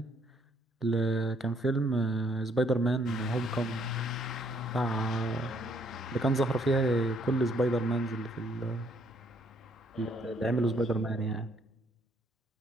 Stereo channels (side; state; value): both; normal; correlation 0.67